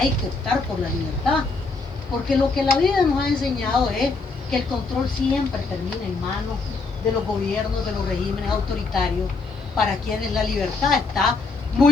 que optar por la libertad, porque lo que la vida nos ha enseñado es que el control siempre termina en manos de los gobiernos, de los regímenes autoritarios, para quienes la libertad está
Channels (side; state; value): right; quieter; 4.0 dB